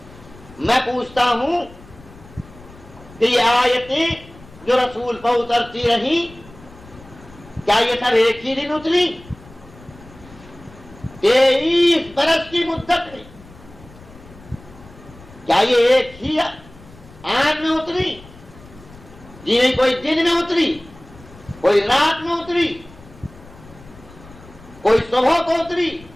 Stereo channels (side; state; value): left; noise; rumble, 21 dB below the sound